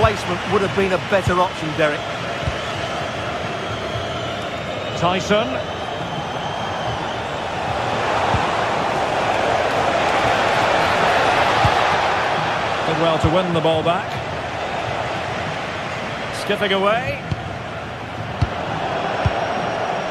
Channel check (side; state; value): both; identical; correlation 1.00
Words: would have been a better option, Derek. Tyson. Did well to win the ball back. Skipping away.